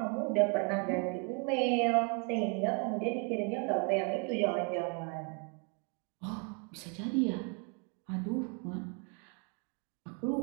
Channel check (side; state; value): left; quieter; 36.7 dB